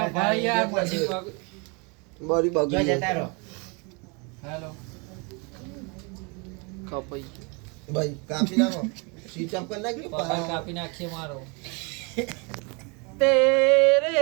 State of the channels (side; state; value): left; quieter; 31.6 dB